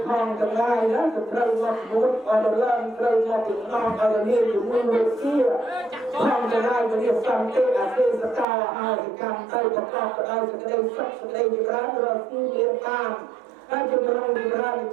ផងទាំងឡាយណាទៅត្រូវមកមួយអរឡើងត្រូវមកចំណងអរនេះជំនួយវិទ្យាផងទាំងឡាយវិទ្យាសន្តិអទេសកលអាយកម្មទៅប្រកបដោយសេចក្តីសុខសេចក្តីវិរៈរស់ទីមានតាមហើយជំរុញវិរៈ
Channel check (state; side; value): drops out; left; at 8.5 s